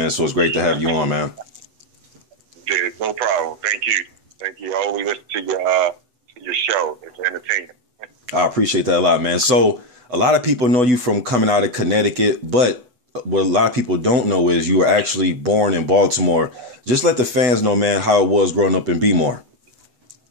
so it's great to have you on, man. Yeah, no problem. Thank you. Thank you. I always listen to your show. It's entertaining. I appreciate that a lot, man. So a lot of people know you from coming out of Connecticut, but what a lot of people don't know is you were actually born in Baltimore. Just let the fans know, man, how it was growing up in Bmore.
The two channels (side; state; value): left; late; 8.0 ms